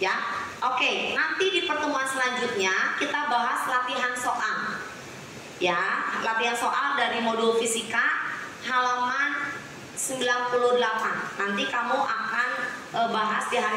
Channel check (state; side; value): identical; both; correlation 1.00